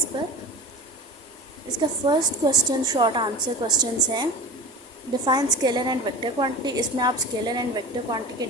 पर। इसका first question short answer questions हैं। Define scalar and vector quantity. इसमें आप स्केलर एंड वेक्टर क्वांटिटी के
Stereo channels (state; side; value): normal; both; correlation 0.34